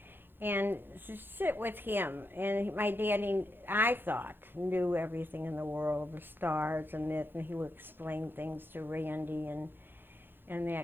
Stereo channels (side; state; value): left; late; 0.10 ms